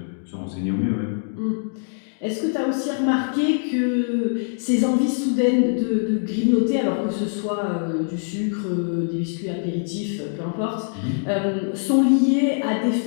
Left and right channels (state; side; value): silent; right; digital silence